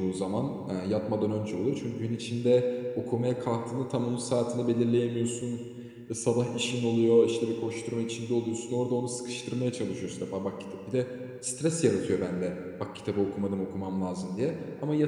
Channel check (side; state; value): both; identical; correlation 1.00